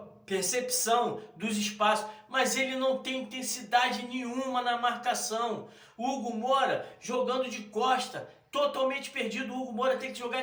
percepção dos espaços, mas ele não tem intensidade nenhuma na marcação. O Hugo Moura jogando de costa, totalmente perdido. O Hugo Moura tem que jogar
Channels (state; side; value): identical; both; correlation 1.00